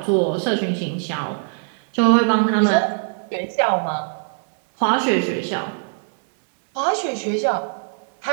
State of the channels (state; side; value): silent; left; digital silence